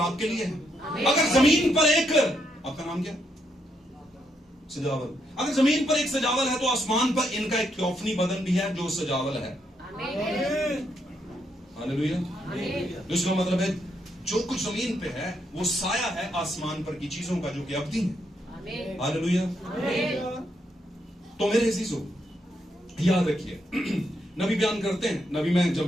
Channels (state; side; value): normal; both; correlation 0.78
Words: आपके लिए है। अगर जमीन पर एक, आपका नाम क्या? सजावल। अगर जमीन पर एक सजावल है तो आसमान पर इनका एक थियोफनी बदन भी है जो सजावल है। हालेलुया। इसका मतलब है जो कुछ जमीन पे है वो साया है आसमान पर की चीजों का जो कि अवधि है। हालेलुया। तो मेरे अजीजों याद रखिए, नबी बयान करते हैं। नबी, मैं